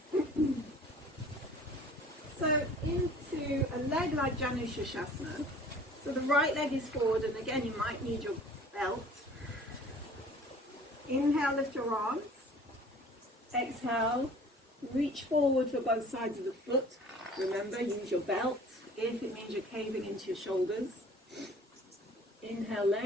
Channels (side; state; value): both; normal; correlation 0.49